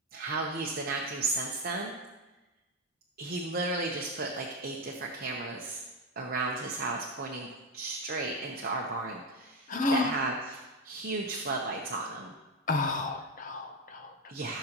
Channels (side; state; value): both; normal; correlation 0.10